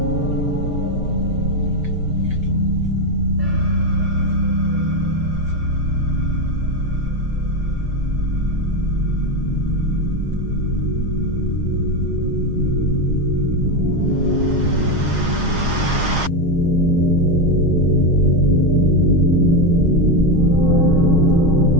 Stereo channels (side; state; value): left; late; 6.4 ms